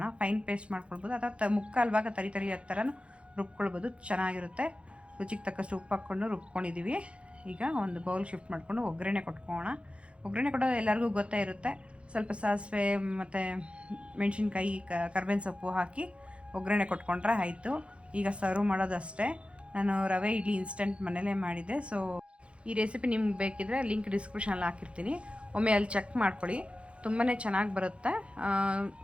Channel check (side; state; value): left; late; 0.059 ms